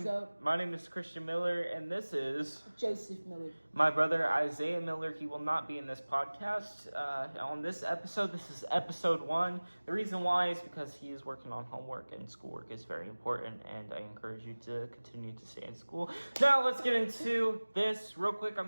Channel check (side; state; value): both; inverted; correlation -1.00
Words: up? My name is Christian Miller, and this is Joseph Miller. my brother Isaiah Miller. He will not be in this podcast on this episode. This is episode 1. The reason why is because he is working on homework, and schoolwork is very important, and I encourage you to continue to stay in school. Now, let's get into this real quick.